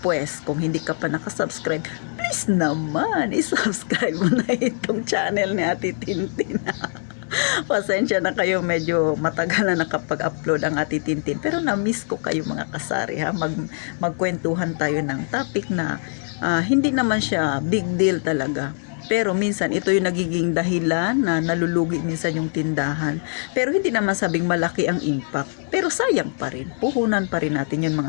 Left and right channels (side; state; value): right; silent; 63 dB below the other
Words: kung hindi ka pa nakasubscribe, please naman, isubscribe mo na itong channel ni ate Tintin. Pasensya na kayo, medyo matagal na nakapag-upload ang ati Tintin. Pero na-miss ko kayo mga kasari ha. Magkwentuhan tayo ng topic na hindi naman siya big deal talaga. Pero minsan ito yung nagiging dahilan na nalulugi minsan yung tindahan. Pero hindi naman sabing malaki ang impact. Pero sayang pa rin. Puhunan pa rin natin yun